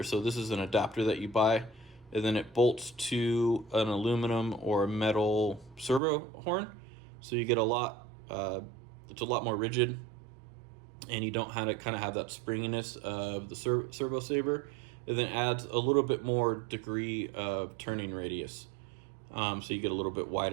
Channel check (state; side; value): drops out; left; at 6.0 s